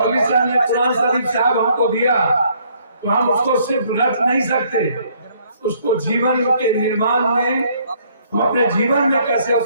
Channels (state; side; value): inverted; both; correlation -0.65